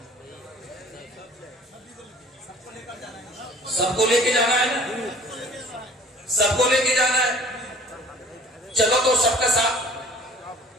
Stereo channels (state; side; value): normal; both; correlation 0.50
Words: سب کو لے کے جانا ہے نا، سب کو لے کے جانا ہے۔ چلو تو سب کا ساتھ،